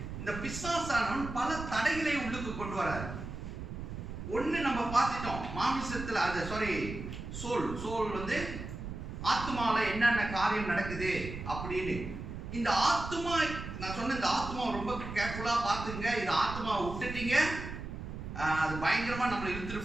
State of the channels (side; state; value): right; noise; rumble, 8 dB below the sound